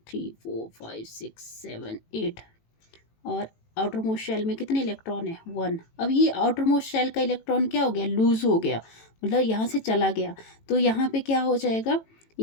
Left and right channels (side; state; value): right; late; 18 ms